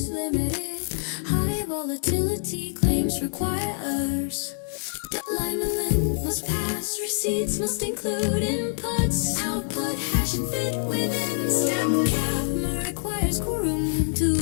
limited. High volatility claims requires alignment must pass, receipts must include inputs, output hash and fit within step cap requires quorum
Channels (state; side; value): silent; right; digital silence